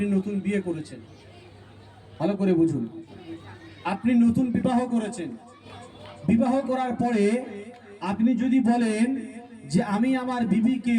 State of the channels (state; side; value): identical; both; correlation 1.00